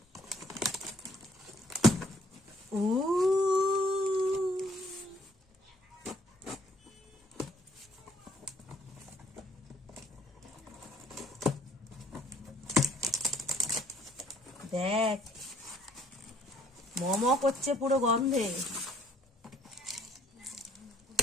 দেখ মম করছে পুরো গন্ধে।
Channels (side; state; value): both; normal; correlation 0.63